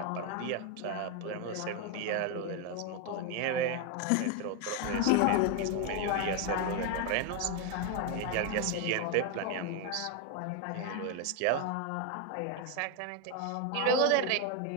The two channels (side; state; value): both; different; correlation 0.01